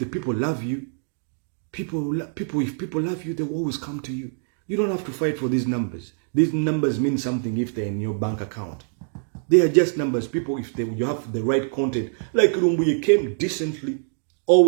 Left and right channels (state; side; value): silent; left; 63 dB below the other